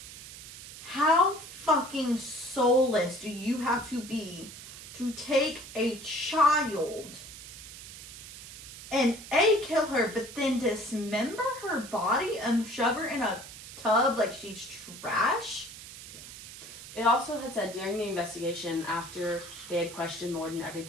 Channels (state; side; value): noise; right; hiss, 14 dB below the sound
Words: how fucking soulless do you have to be to take a child and kill her, but then dismember her body and shove her in a tub like she's trash? It also had said during the investigation, after they had questioned Lloyd and